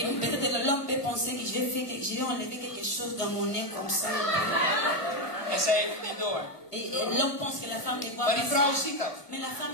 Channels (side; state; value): right; late; 1.3 ms